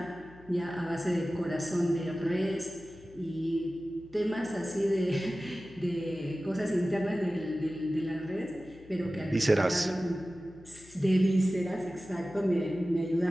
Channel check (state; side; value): noise; left; hum, 23 dB below the sound